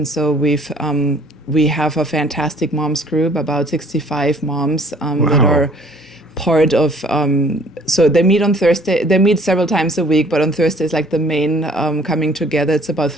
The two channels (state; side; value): normal; both; correlation 0.56